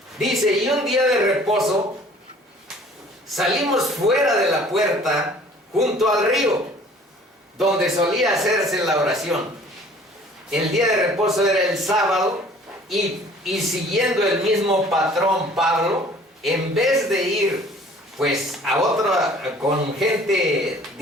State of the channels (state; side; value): normal; both; correlation 0.52